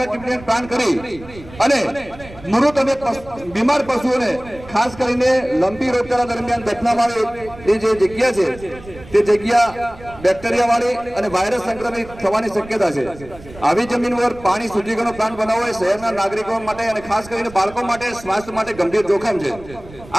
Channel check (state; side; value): noise; right; rumble, 18 dB below the sound